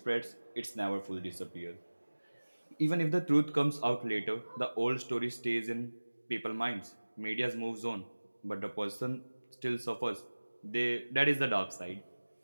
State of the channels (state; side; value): inverted; both; correlation -1.00